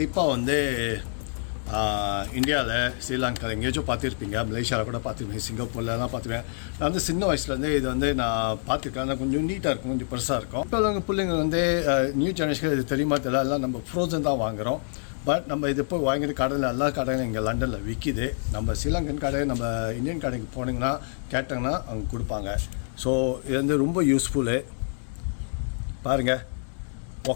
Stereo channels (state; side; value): silent; right; 59 dB below the other